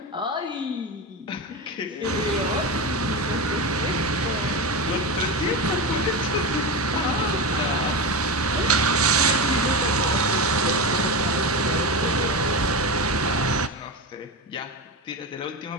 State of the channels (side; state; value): both; normal; correlation 0.19